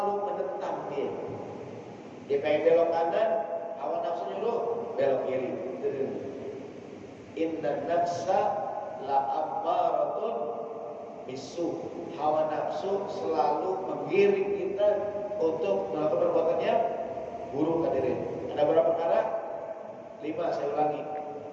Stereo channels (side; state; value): both; identical; correlation 1.00